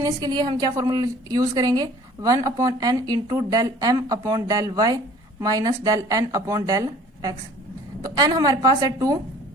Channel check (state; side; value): normal; both; correlation 0.50